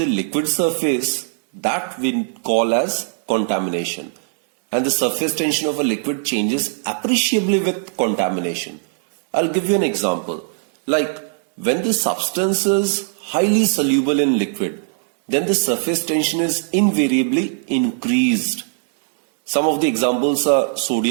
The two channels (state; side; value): silent; left; digital silence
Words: liquid surface, that we call as contamination. And the surface tension of a liquid changes appreciably with contamination. I'll give you an example. Like when the substance is highly soluble in liquid, then the surface tension is invariably increased. Some of the examples are